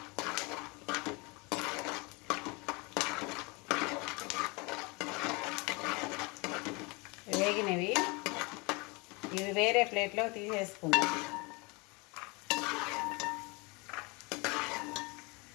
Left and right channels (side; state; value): right; quieter; 27.9 dB